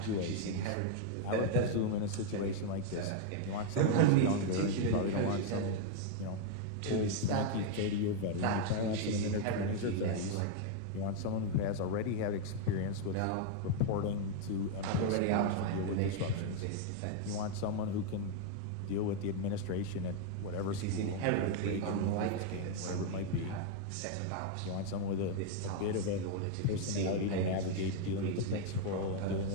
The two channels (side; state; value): both; different; correlation 0.00